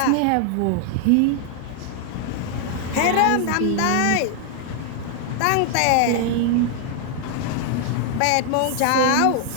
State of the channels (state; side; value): different; both; correlation 0.00